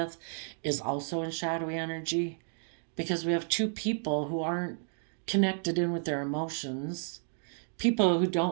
is also in shadowy energy, because we have two people who aren't connected in with their emotions, people who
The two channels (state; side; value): silent; left; 57 dB below the other